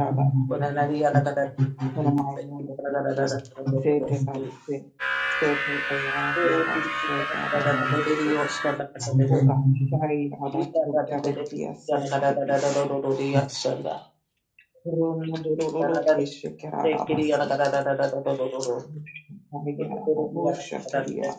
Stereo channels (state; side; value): identical; both; correlation 1.00